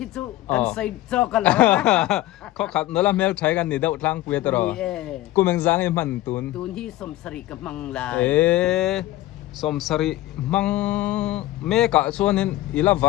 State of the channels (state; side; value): quieter; right; 16.3 dB